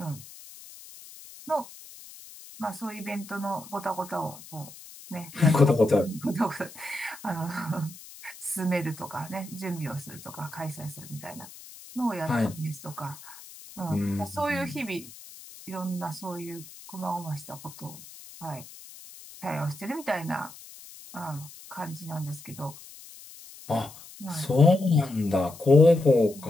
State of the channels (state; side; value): noise; left; hiss, 17 dB below the sound